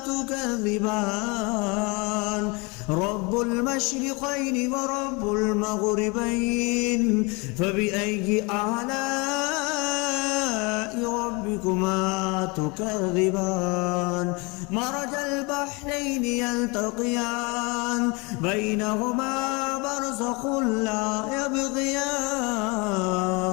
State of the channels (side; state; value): right; quieter; 28.7 dB